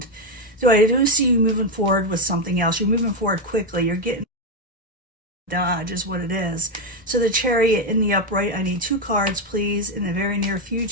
So I do see you moving forward with something else. You're moving forward quickly. You're getting dodge is what it is. So the Chariot in the upright, I need 2 cards, please, in the very near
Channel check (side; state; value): both; normal; correlation 0.06